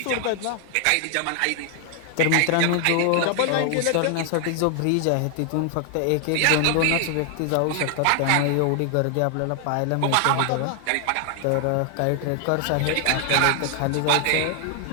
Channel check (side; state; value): both; different; correlation 0.00